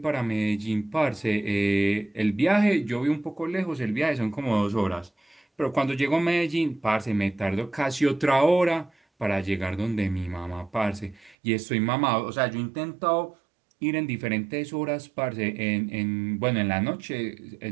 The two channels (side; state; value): left; drops out; at 11.4 s